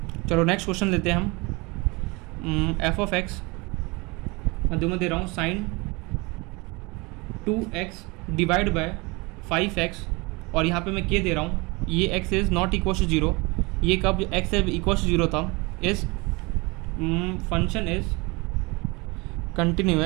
चलो नेक्स्ट क्वेश्चन लेते हैं हम। f ऑफ x मैं दे रहा हूँ sign 2x divide by 5x, और यहाँ पे मैं k दे रहा हूँ, ये x is not equal to 0, ये कब x इक्वल टू 0 था, इस फंक्शन इज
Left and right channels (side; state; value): left; quieter; 26.1 dB